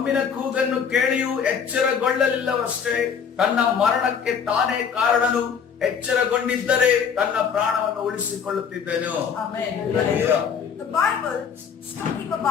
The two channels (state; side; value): quieter; right; 6.9 dB